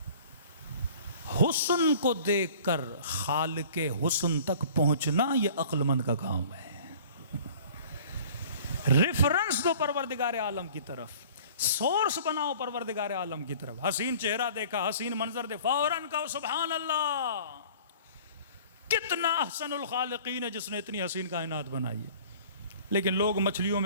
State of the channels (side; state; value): both; inverted; correlation -0.48